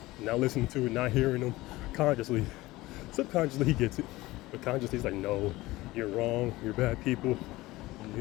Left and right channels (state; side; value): quieter; right; 19.0 dB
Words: not listening to it, not hearing them consciously. Subconsciously he gets it. But consciously he's like, no, you're wrong, you're bad people.